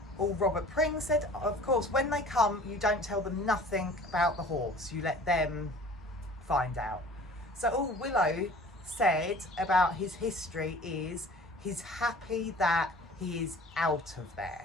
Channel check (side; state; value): both; normal; correlation 0.46